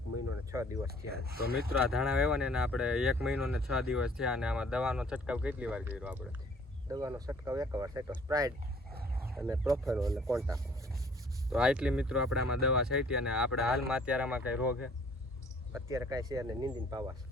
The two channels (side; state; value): both; normal; correlation 0.57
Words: મહિનો ને 6 દિવસ થયા. તો મિત્રો આ ધાણા વેવાને આપણે 1 મહિનો ને 6 દિવસ થયા અને આમાં દવાનો છંટકાવ કેટલી વાર કર્યો આપણે? દવાનો છંટકાવ 1 વાર છાંટ્યો, સ્પ્રાઇડ અને પ્રોફેનો અને કોન્ટાક. તો આટલી મિત્રો આપણે આમાં દવા છાંટી અને આપણે હાલમાં અત્યારે આમાં કઈ રોગ છે? અત્યારે કાંઈ છે અને નીંદીને પાવા છે.